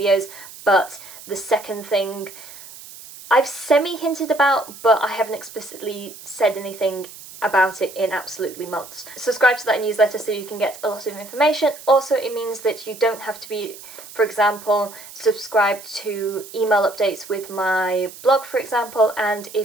but the second thing I've semi-hinted about, but I haven't explicitly said anything about it in absolutely months. Subscribe to that newsletter so you can get a lot of information. Also, it means that you don't have to be, for example, subscribed to email updates with my blog, for example, and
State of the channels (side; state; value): right; noise; hiss, 16 dB below the sound